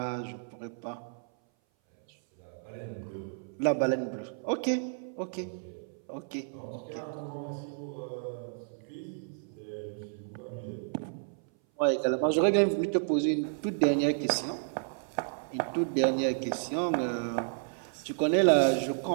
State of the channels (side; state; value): left; silent; 57 dB below the other